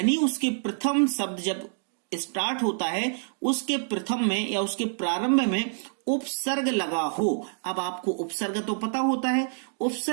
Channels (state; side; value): silent; left; digital silence